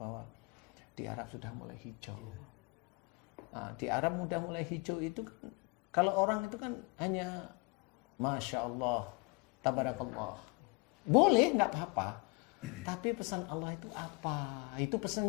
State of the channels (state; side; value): quieter; right; 30.4 dB